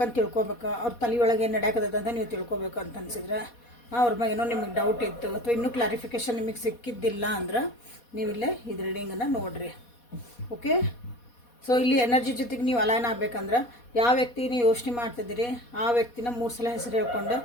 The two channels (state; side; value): late; right; 4.2 ms